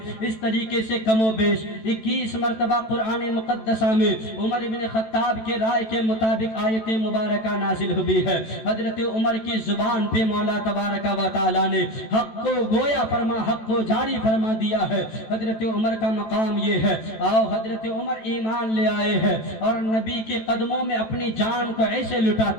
اس طریقے سے کم و بیش 21 مرتبہ قرآن مقدسہ میں عمر ابن خطاب کے رائے کے مطابق آیت مبارکہ نازل ہوئی ہے۔ حضرت عمر کی زبان پہ مولا تبارک و تعالی نے حق کو گویا فرما، حق کو جاری فرما دیا ہے۔ حضرت عمر کا مقام یہ ہے، آؤ حضرت عمر ایمان لے آئے ہیں اور نبی کے قدموں میں اپنی جان کو ایسے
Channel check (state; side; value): late; right; 14 ms